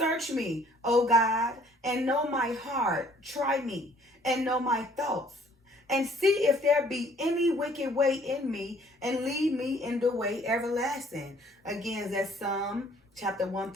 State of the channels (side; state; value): both; normal; correlation 0.59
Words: me, O God, and know my heart. Try me and know my thoughts. And see if there be any wicked way in me, and lead me in the way everlasting. Again, that's Psalm chapter